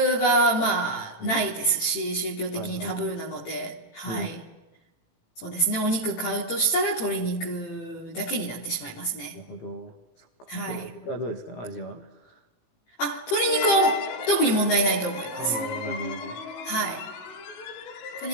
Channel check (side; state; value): right; late; 18 ms